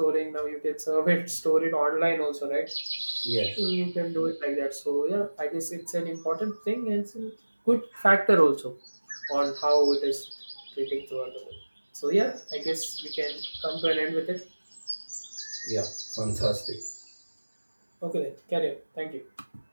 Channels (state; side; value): inverted; both; correlation -1.00